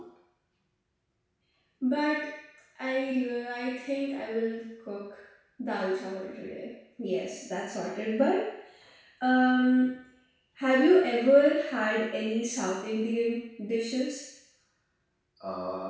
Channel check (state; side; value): identical; both; correlation 1.00